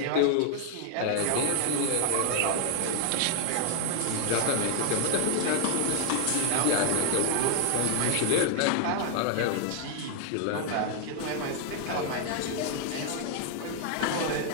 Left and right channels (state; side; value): different; both; correlation 0.00